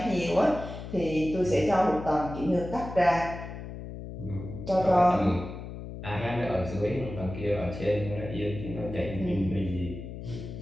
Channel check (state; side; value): noise; left; hum, 10 dB below the sound